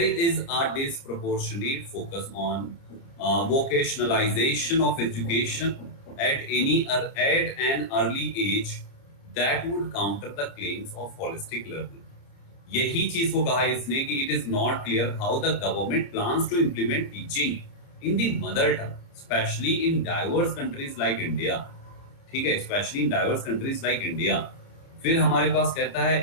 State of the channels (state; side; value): late; right; 29 ms